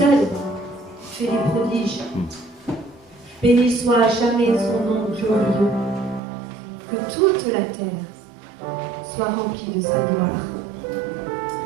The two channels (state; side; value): drops out; left; at 6.2 s